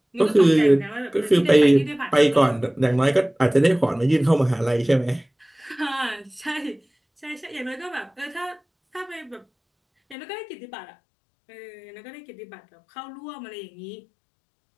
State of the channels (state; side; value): drops out; right; at 10.2 s